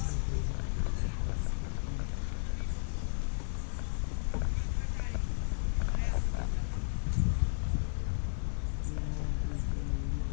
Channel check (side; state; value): right; silent; digital silence